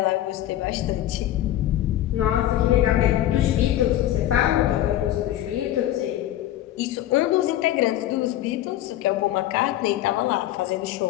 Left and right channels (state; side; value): quieter; right; 13.3 dB